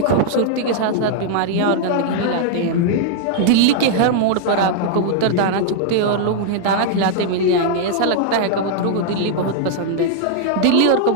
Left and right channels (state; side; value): different; both; correlation -0.01